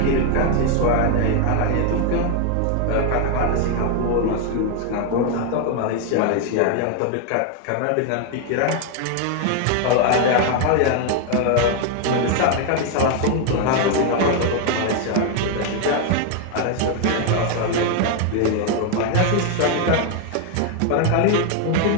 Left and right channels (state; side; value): different; both; correlation 0.00